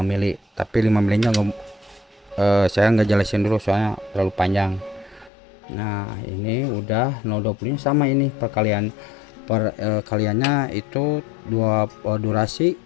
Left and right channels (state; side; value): drops out; right; at 5.3 s